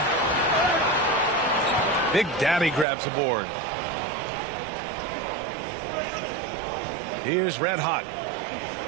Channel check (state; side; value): drops out; left; at 2.9 s